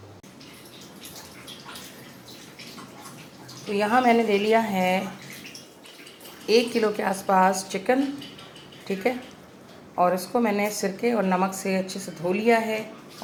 तो यहाँ मैंने ले लिया है 1 किलो के आसपास चिकन, ठीक है। और इसको मैंने सिरके और नमक से अच्छे से धो लिया है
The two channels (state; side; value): identical; both; correlation 1.00